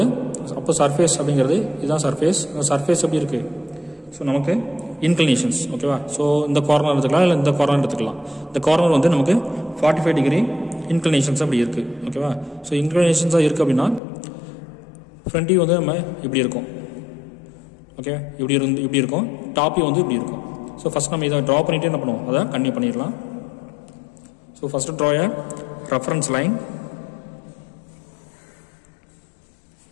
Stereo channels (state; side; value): drops out; right; at 14.0 s